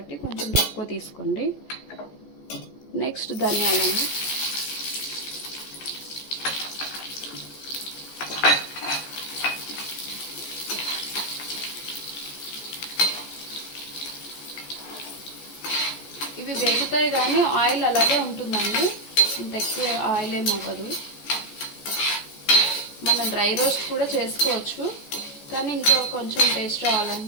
కొంచెం తక్కువ తీసుకోండి. నెక్స్ట్ ధనియాలండి. ఇవి వేగుతాయి కానీ ఆయిల్ అలాగే ఉంటుందండి, ఇంత ఎక్కువ ఆయిల్ ఏమి అవ్వదు. మనం డ్రై రోస్ట్ కూడా చేసుకోవచ్చు, కానీ ఇంకా కొంచెం టేస్ట్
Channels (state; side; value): late; right; 14 ms